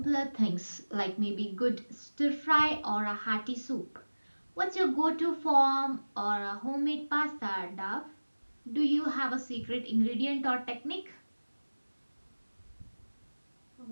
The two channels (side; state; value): both; inverted; correlation -1.00